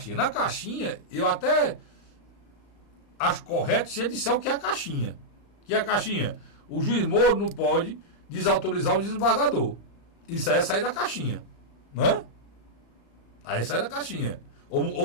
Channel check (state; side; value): late; right; 35 ms